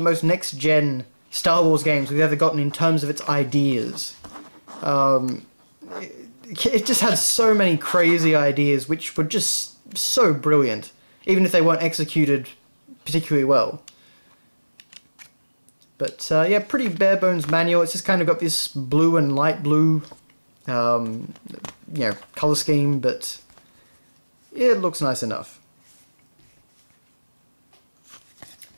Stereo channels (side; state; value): both; inverted; correlation -1.00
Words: most next-gen Star Wars games we've ever gotten in terms of its ideas. It just had so many crazy ideas, which were just so brilliant, even if they weren't executed particularly well. But yeah, pretty bare bones manual. It's just kind of got this blue and light blue, you know, color scheme, but yeah, it looks nice enough.